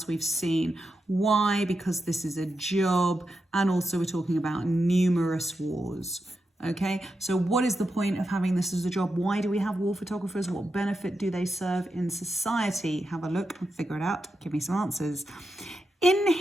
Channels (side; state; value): both; normal; correlation 0.87